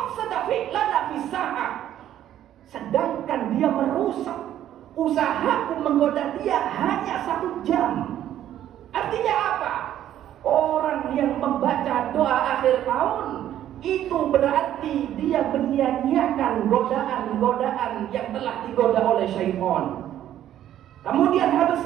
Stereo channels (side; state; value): left; quieter; 11.6 dB